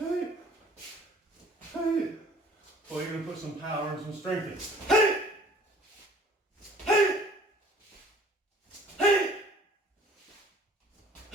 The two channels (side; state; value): both; normal; correlation 0.52